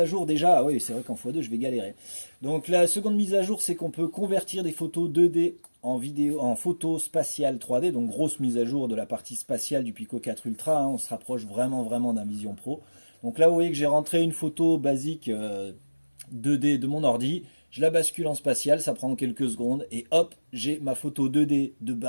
jour déjà. Ah oui, c'est vrai qu'en x2, je vais galérer. Donc la seconde mise à jour, c'est qu'on peut convertir des photos 2D en vidéo, en photo spatiale 3D. Donc grosse mise à jour de la partie spatiale du Pico 4 Ultra, hein. On se rapproche vraiment d'un Vision Pro. Donc là, vous voyez que j'ai rentré une photo basique 2D de mon ordi. Je la bascule en spatial, ça prend quelques secondes. Et hop, j'ai ma photo 2D de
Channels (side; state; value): both; inverted; correlation -1.00